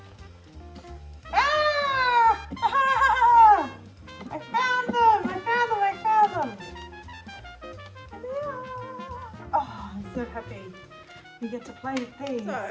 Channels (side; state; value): both; identical; correlation 1.00